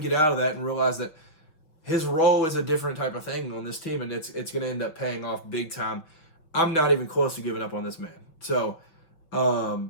out of that and realize that his role is a different type of thing on this team, and it's going to end up paying off big time. I'm not even close to giving up on this man. So,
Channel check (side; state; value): right; late; 6.1 ms